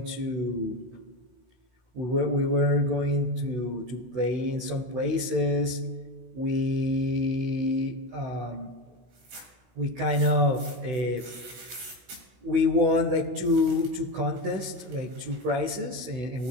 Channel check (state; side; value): late; left; 16 ms